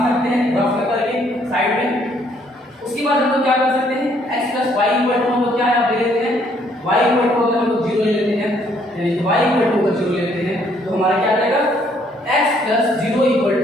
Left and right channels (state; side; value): normal; both; correlation 0.66